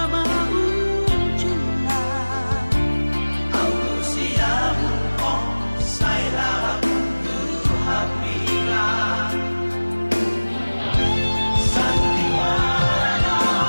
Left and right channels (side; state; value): both; inverted; correlation -1.00